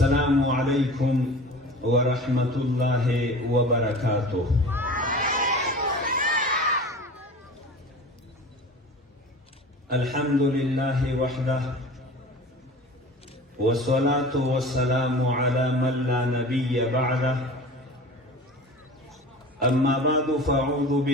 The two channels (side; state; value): both; normal; correlation 0.38